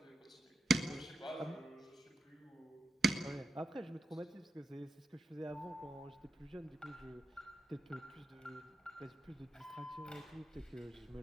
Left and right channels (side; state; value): both; normal; correlation 0.89